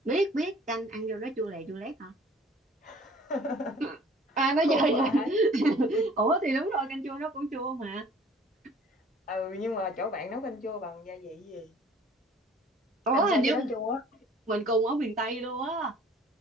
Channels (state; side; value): normal; both; correlation 0.52